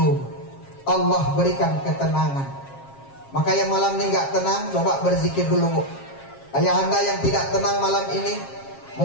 Allah berikan ketenangan. Maka yang malam ini nggak tenang, coba berzikir dulu, Bu. Ayahanda yang tidak tenang malam ini,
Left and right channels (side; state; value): right; late; 7.4 ms